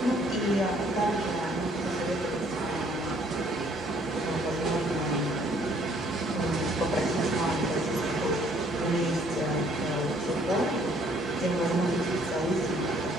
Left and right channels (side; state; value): both; normal; correlation 0.62